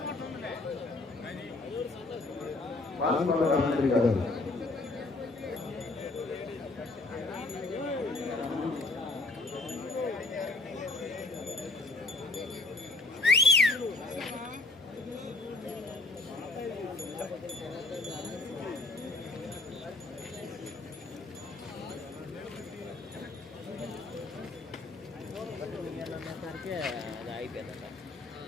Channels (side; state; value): right; quieter; 3.2 dB